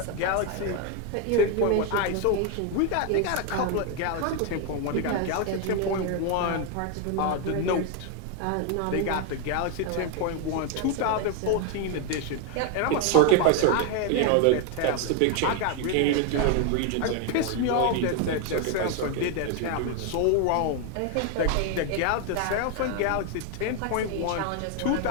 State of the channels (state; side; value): different; both; correlation 0.01